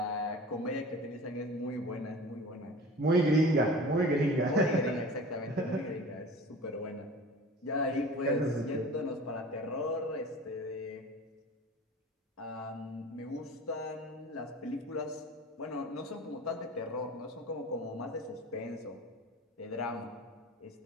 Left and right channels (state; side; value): normal; both; correlation 0.39